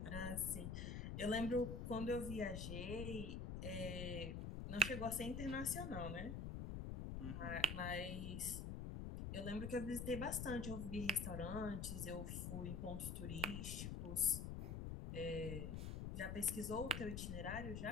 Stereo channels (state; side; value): noise; left; rumble, 4 dB below the sound